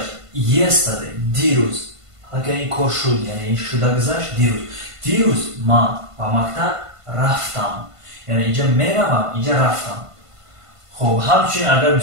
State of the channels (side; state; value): left; late; 1.5 ms